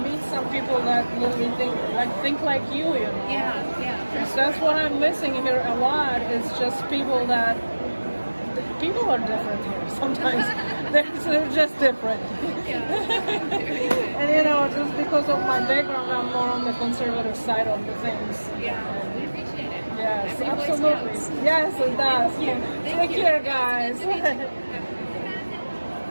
some people that literally think like you, So that's what I'm missing here a lot. It's just people are different here. Sometimes they're just different. And just because of my background, I'm more on the conservative side of the things. Yeah, we appreciate it. Yes, Every voice absolutely. counts. Yes, it does. Thank you. Take care, guys.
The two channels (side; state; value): both; inverted; correlation -1.00